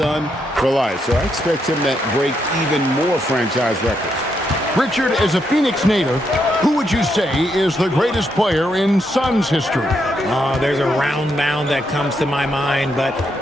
for life. So I expect him to break even more franchise records. Richard, as a Phoenix native, who would you say is the greatest player in Suns history? Oh, there's a round mound that comes to my mind, but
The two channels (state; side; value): normal; both; correlation 0.79